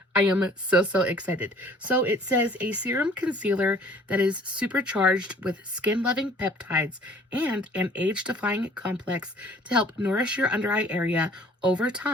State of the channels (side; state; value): both; normal; correlation 0.54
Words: I am so, so excited. So it says a serum concealer that is supercharged with skin-loving peptides and an age-defying complex to help nourish your under eye area over